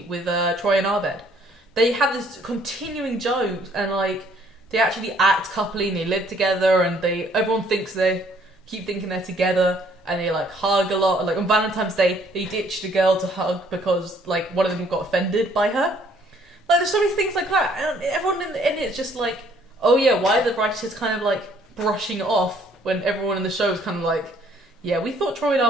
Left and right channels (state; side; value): normal; both; correlation 0.62